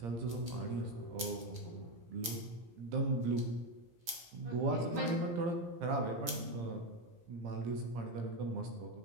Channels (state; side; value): late; left; 17 ms